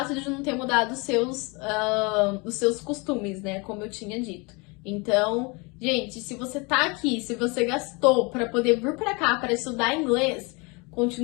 de não ter mudado os seus costumes, né, como eu tinha dito. Então, gente, se você tá aqui, se você gastou para poder vir para cá para estudar inglês,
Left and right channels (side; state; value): right; quieter; 28.6 dB